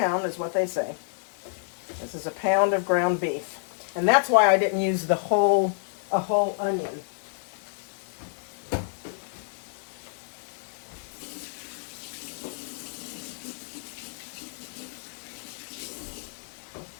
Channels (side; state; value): right; silent; digital silence